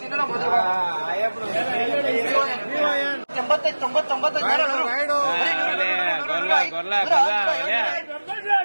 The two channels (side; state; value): both; inverted; correlation -1.00